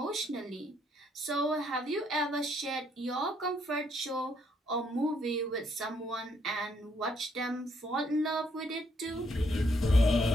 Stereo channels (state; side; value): normal; both; correlation 0.71